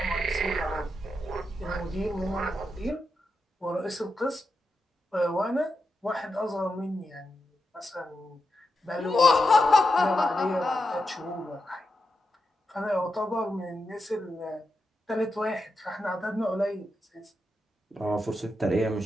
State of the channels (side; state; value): both; normal; correlation 0.87